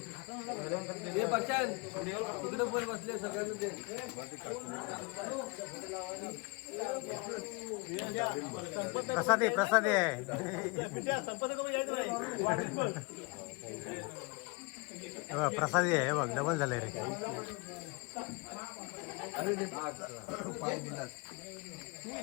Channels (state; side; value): quieter; right; 28.5 dB